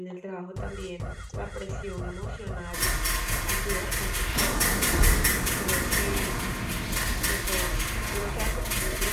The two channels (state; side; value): identical; both; correlation 1.00